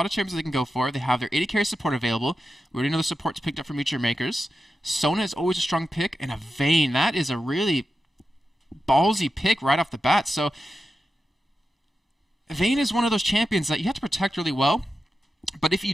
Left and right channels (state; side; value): normal; both; correlation 0.91